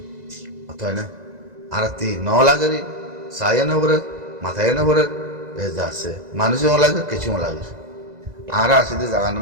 অতএব না আর তি ন লাগেরি সায়া না বরে মাথায় না বরে যাচ্ছে মানুষও লাগে কিছুও লাগে আরা আছে যে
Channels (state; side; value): late; left; 2.0 ms